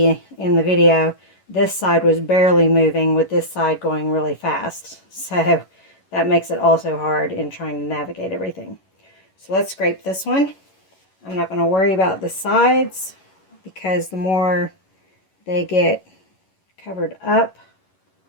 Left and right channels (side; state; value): right; late; 11 ms